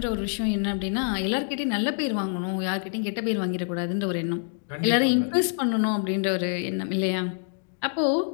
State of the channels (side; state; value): right; silent; digital silence